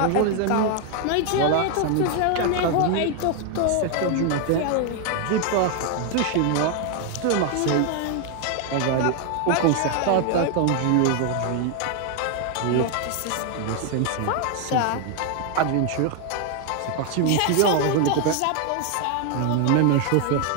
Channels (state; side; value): different; both; correlation 0.00